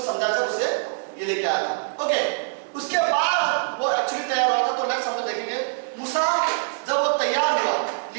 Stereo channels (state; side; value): silent; left; 63 dB below the other